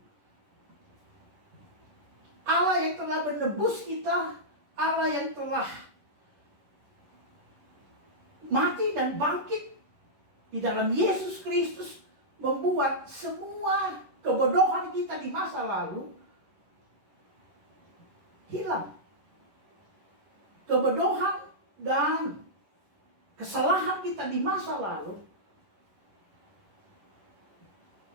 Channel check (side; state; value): left; late; 11 ms